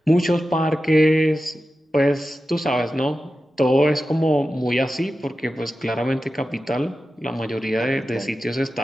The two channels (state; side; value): normal; both; correlation 0.93